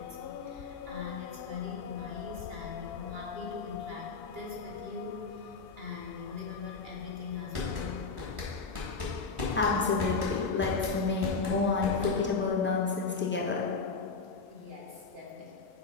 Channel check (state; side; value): quieter; right; 4.5 dB